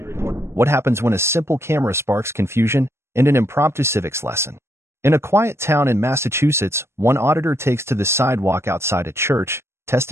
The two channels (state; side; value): late; left; 0.13 ms